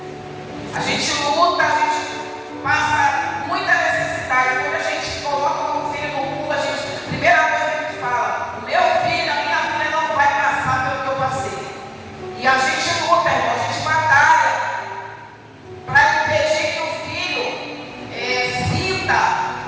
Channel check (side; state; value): both; identical; correlation 1.00